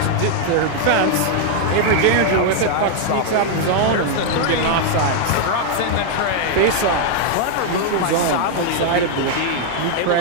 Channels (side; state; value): both; different; correlation 0.00